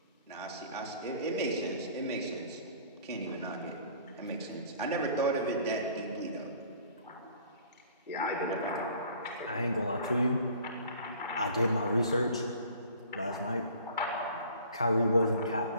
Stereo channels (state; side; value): inverted; both; correlation -0.50